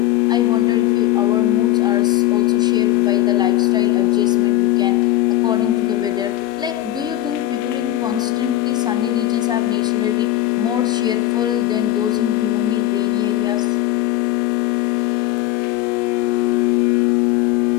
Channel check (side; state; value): right; quieter; 14.8 dB